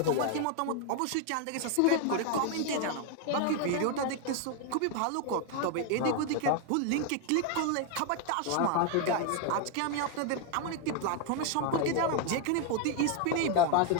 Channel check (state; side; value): different; both; correlation 0.00